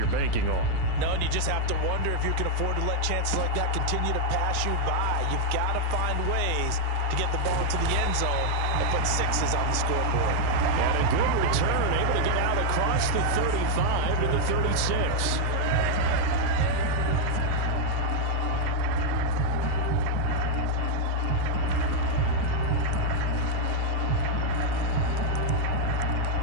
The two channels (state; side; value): different; both; correlation 0.00